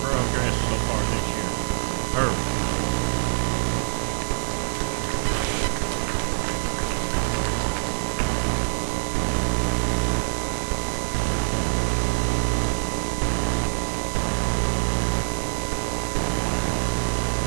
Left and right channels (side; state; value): left; silent; 62 dB below the other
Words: so far this year. Herb.